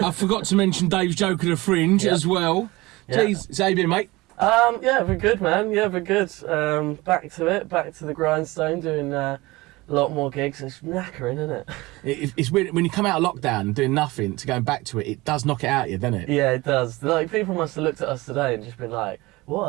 I forgot to mention Dave's Joke of the Fringe as well. Jeez, so how you been, mate? Yeah, we're good, man. Yeah, we're good. Back to it, back to the grindstone, doing a lot more gigs. It's knackering, isn't it? It's weird when you come out of lockdown and doing nothing to going back to it. It does knock it out of you, doesn't it? Yeah, it does. Like, people must have looked at us today and just been like, what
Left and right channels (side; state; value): left; quieter; 21.1 dB